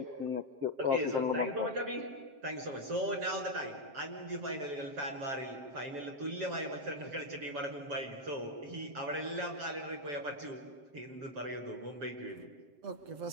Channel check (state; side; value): late; left; 7.6 ms